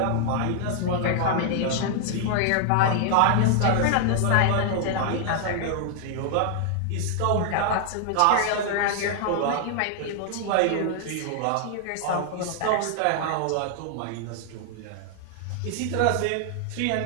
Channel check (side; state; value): both; different; correlation 0.00